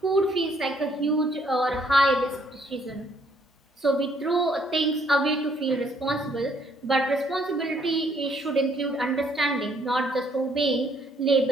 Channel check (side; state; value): both; normal; correlation 0.67